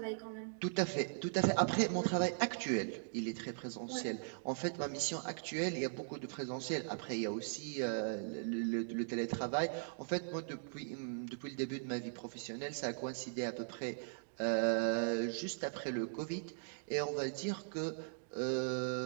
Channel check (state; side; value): silent; left; digital silence